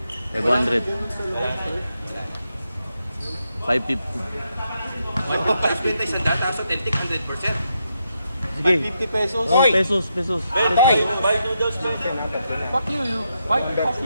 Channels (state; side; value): inverted; both; correlation -0.82